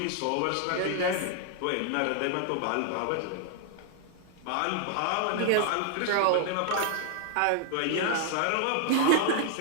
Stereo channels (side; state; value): both; different; correlation 0.00